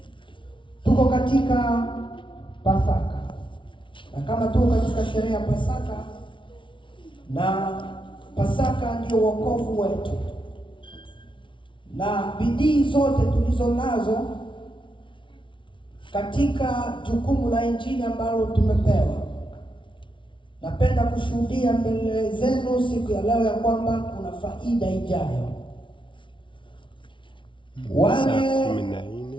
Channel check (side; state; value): right; late; 0.24 ms